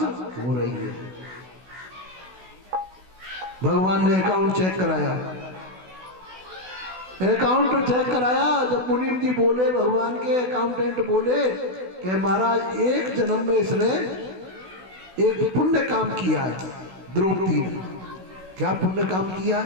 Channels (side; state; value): left; late; 16 ms